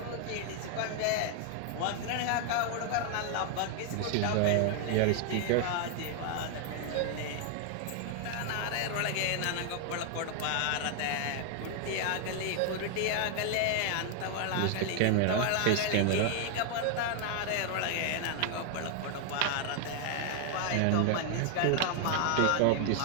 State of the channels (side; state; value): both; different; correlation 0.00